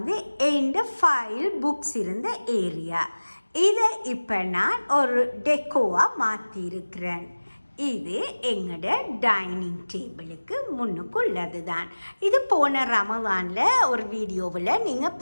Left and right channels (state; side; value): inverted; both; correlation -1.00